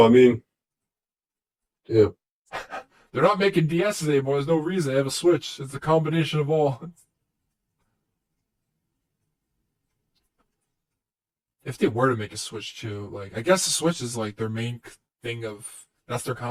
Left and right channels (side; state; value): both; identical; correlation 1.00